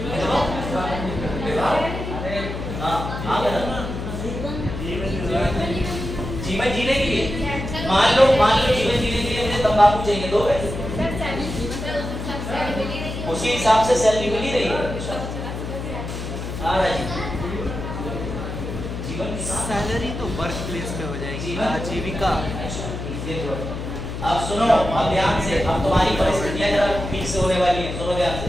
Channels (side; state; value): left; noise; hum, 6 dB below the sound